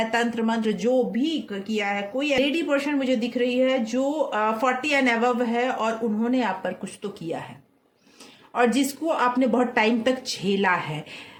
तंत्र मंत्र जो भी किया है, कोई लेडी पर्सन मुझे दिख रही है जो 40 एंड अबव है और उन्होंने आप पर कुछ तो किया है और जिसको आपने बहुत टाइम तक झेला है।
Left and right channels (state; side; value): identical; both; correlation 1.00